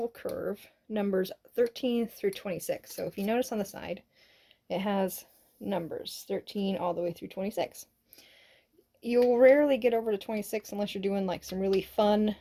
curve numbers 13 through 26. So if you notice on the side, it has numbers 13 all the way through 26. You'll rarely get over to 26 unless you're doing like some really fun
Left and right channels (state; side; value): identical; both; correlation 1.00